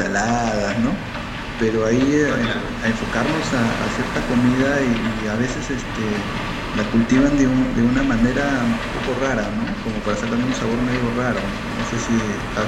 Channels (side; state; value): both; identical; correlation 1.00